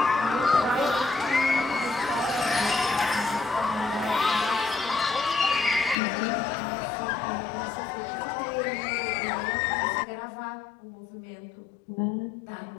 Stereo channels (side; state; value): right; drops out; at 6.0 s